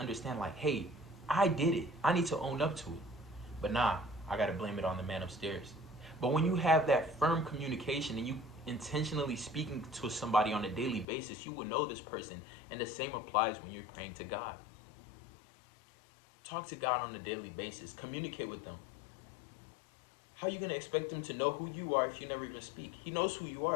like, hey, I did it. I need to own up to it. But nah, I got to blame it on the man upstairs. But when you have that firm communication and you intentionally speaking to somebody on a daily basis, you will know this person. And the same applies when you're praying to God. Talk to God on a daily basis. Communicate with them. How are you going to expect Him to know who you are if you never even speak? He knows who you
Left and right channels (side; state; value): right; drops out; at 11.1 s